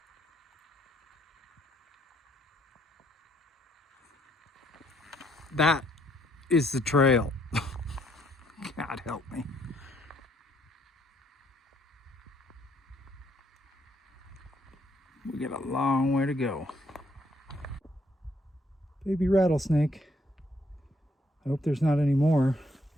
That is the trail. God help me. We got a long way to go. Baby rattlesnake. I hope there's not any more.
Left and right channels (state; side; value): normal; both; correlation 0.70